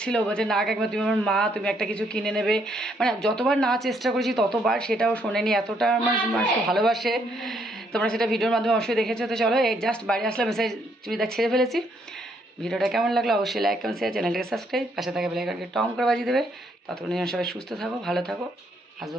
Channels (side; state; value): both; normal; correlation 0.71